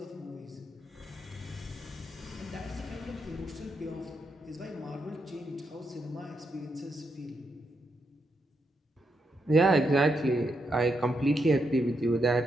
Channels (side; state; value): both; normal; correlation 0.81